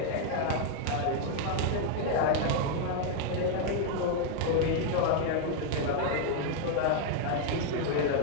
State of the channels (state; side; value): different; both; correlation 0.00